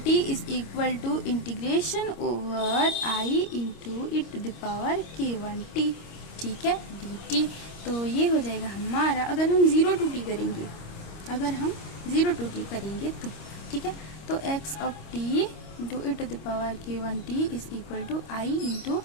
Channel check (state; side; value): late; right; 25 ms